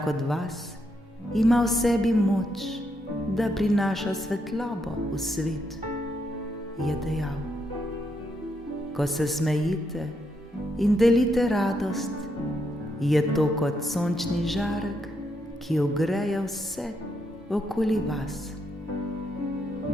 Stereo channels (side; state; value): both; normal; correlation 0.79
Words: od vas ima v sebi moč, da prinaša svetlobo v svet, je dejal. Ko se smejite in delite radost, je to kot sončni žarek, ki ogreje vse okoli vas.